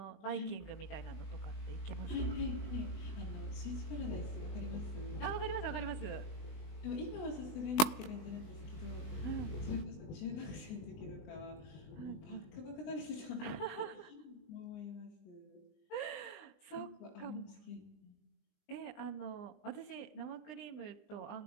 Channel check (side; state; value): right; late; 20 ms